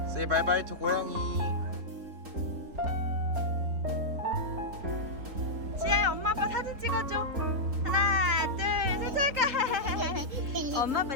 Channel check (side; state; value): left; late; 3.8 ms